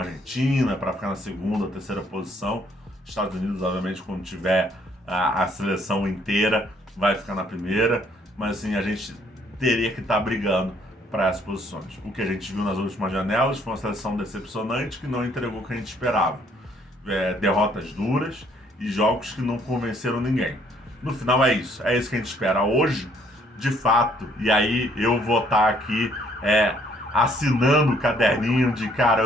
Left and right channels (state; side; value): normal; both; correlation 0.65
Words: Argentina para ficar na segunda ou terceira posição. Estados Unidos, obviamente, quando tiver a seleção inteira, vai ficar na primeira. Mas assim, a gente teria que estar brigando para essas posições. O que a gente viu nas últimas janelas foi uma seleção decepcionante que não entregou o que a gente esperava. derrotas duras e jogos que não convenceram ninguém. No final é isso que a gente espera hoje, de fato, e aí eu vou estar aqui assinando o caderninho de, cara,